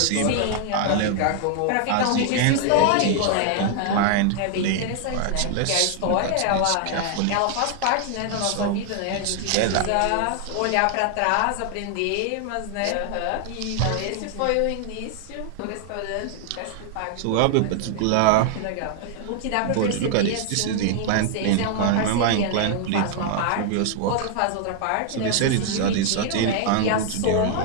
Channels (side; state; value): both; different; correlation 0.00